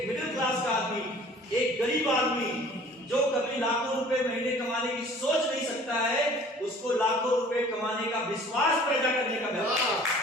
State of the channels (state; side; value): normal; both; correlation 0.50